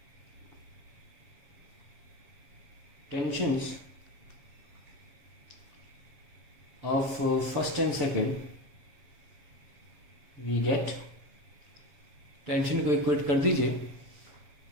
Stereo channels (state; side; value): late; left; 7.3 ms